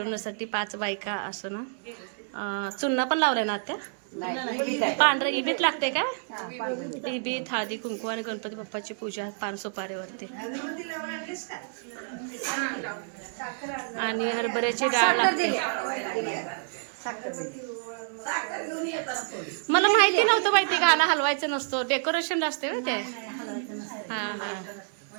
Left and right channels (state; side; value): silent; left; digital silence